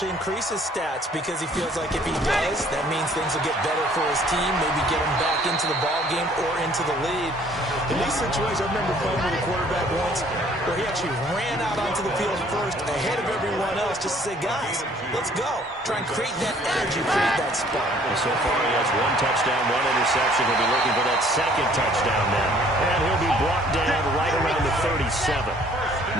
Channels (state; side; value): normal; both; correlation 0.58